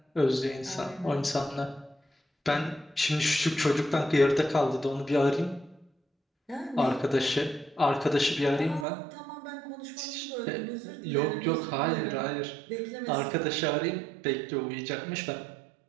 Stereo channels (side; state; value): left; drops out; at 8.8 s